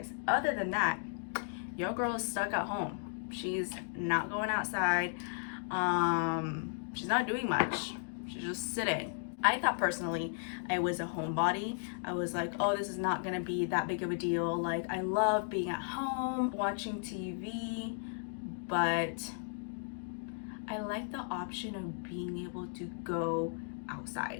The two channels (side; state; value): right; silent; digital silence